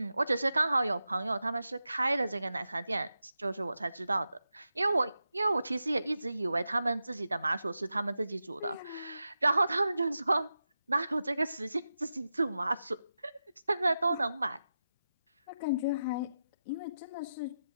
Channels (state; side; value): inverted; both; correlation -0.90